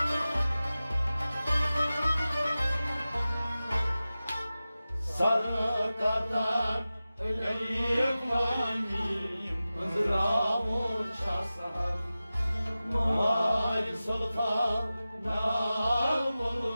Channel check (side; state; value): both; inverted; correlation -0.95